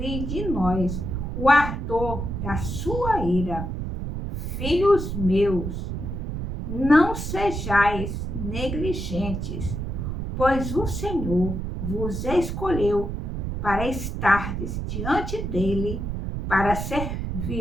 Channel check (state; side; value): noise; right; rumble, 4 dB below the sound